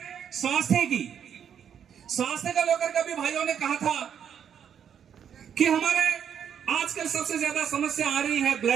स्वास्थ्य की। स्वास्थ्य का लेकर के भी भाइयों ने कहा था कि हमारे आजकल सबसे ज्यादा समस्या आ रही है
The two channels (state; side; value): quieter; left; 8.4 dB